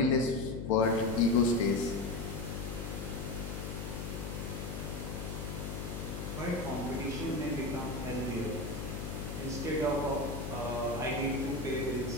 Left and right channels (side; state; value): left; noise; hum, 5 dB below the sound